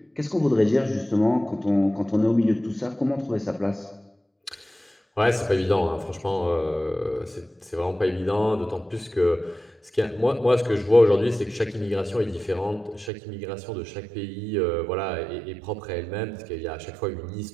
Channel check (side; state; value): left; drops out; at 13.1 s